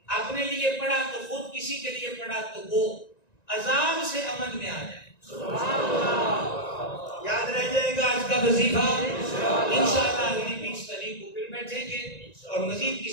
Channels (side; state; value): right; late; 1.9 ms